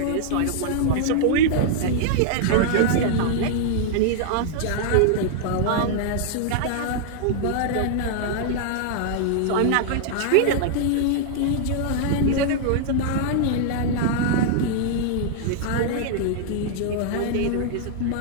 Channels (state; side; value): different; both; correlation -0.01